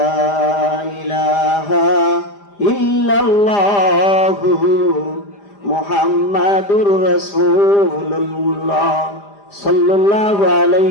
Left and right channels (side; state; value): right; late; 5.0 ms